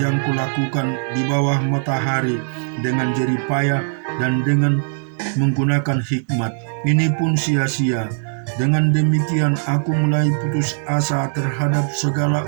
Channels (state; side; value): silent; left; 66 dB below the other